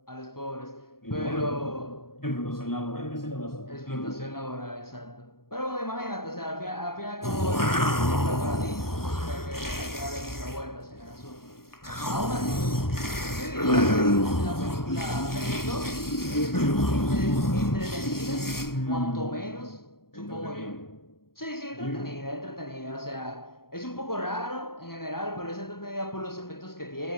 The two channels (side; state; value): right; late; 0.93 ms